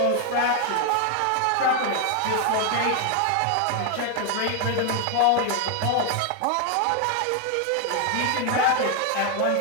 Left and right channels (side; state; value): both; different; correlation 0.00